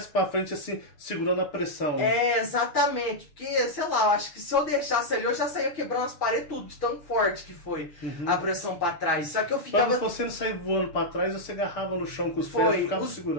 pra frente, assim, segurando a pressão. Exatamente. Porque, sei lá, eu acho que se eu deixasse ali, eu já saía quebrando as paredes tudo, de tão forte que foi a pressão pra trás. Só que eu ficava... Pra você não sair voando pra trás, você agarrava no chão com os pés e ficava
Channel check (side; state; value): right; late; 6.8 ms